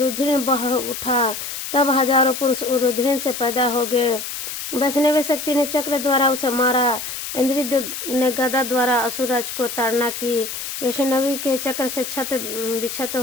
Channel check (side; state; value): left; noise; hiss, 6 dB below the sound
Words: बह उठा। तब हजारों पुरुष रुधिर से पैदा हो गए। वैष्णवी शक्ति ने चक्र द्वारा उसे मारा। इंद्रिय ने गदा द्वारा असुरराज को ताड़ना की। वैष्णवी के चक्र से छत बिछत